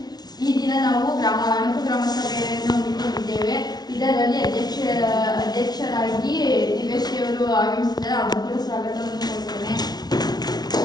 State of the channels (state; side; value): late; right; 0.19 ms